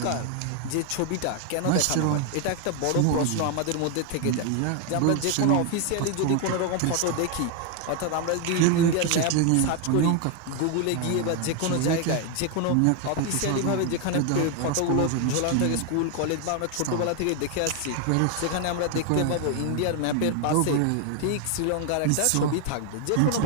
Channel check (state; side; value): different; both; correlation 0.01